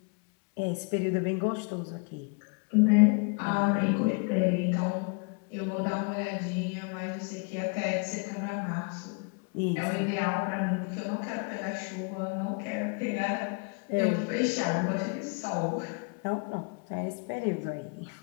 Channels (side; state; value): right; quieter; 35.3 dB